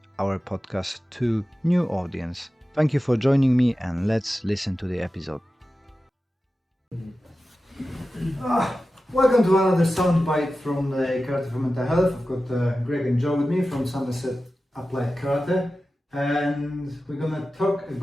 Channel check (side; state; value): both; normal; correlation 0.94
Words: our podcast to new audience. Thank you for joining me, and let's listen to the episode. Welcome to another soundbite from the Karate for Mental Health. I've got Greg and Joe with me from Somerset Applied Karate, and we're gonna talk